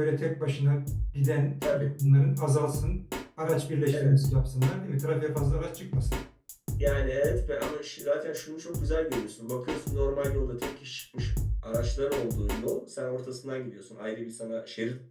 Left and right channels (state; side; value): identical; both; correlation 1.00